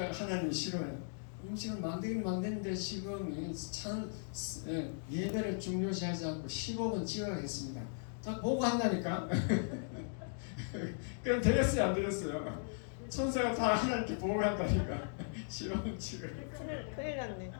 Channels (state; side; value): silent; right; digital silence